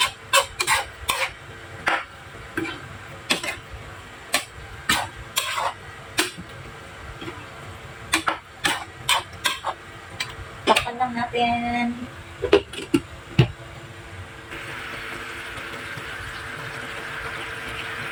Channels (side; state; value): both; identical; correlation 1.00